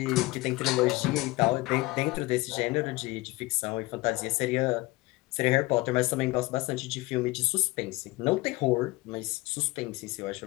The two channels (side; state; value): right; quieter; 21.3 dB